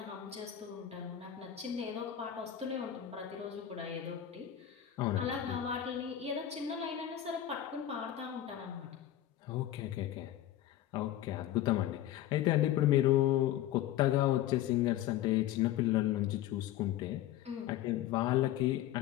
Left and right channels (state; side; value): quieter; right; 12.2 dB